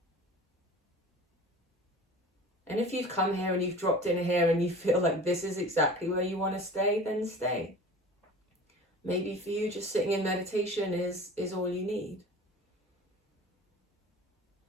And if you've come here and you've dropped in here and you feel like this is exactly where you want to stay, then stay. Maybe for you, just sitting in meditation is all you need.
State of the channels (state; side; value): normal; both; correlation 0.40